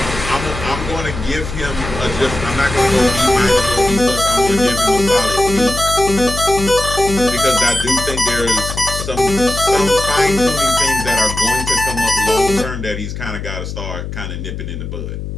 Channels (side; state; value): left; noise; hum, 7 dB below the sound